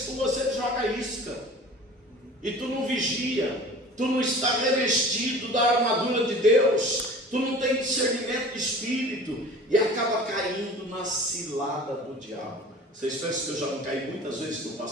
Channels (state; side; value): normal; both; correlation 0.42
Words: com você, joga isca. E tu não vigia, tu não está revestido da armadura de Deus, tu não tem discernimento de espírito e acaba caindo na cilada do diabo. Vocês pensam que eu já não caí muitas vezes no